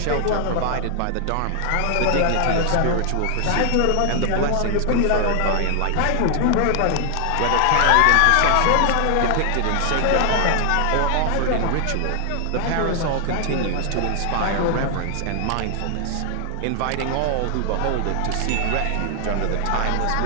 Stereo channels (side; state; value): both; different; correlation 0.00